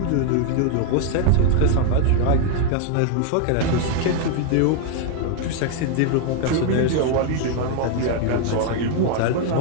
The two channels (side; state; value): both; different; correlation 0.00